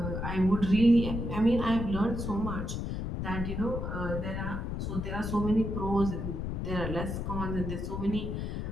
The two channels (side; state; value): left; noise; rumble, 3 dB below the sound